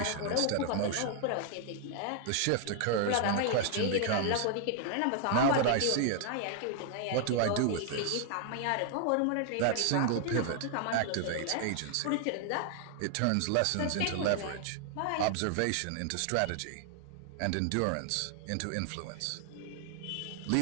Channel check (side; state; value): both; different; correlation 0.00